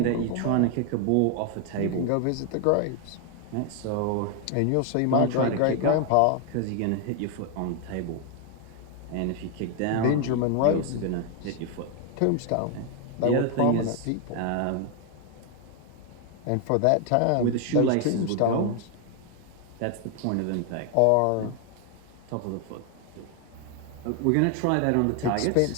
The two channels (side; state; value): both; different; correlation 0.00